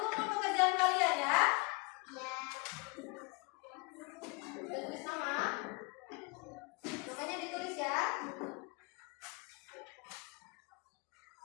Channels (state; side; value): quieter; right; 29.0 dB